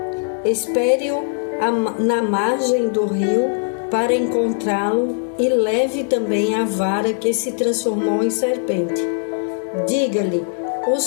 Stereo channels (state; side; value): silent; right; 60 dB below the other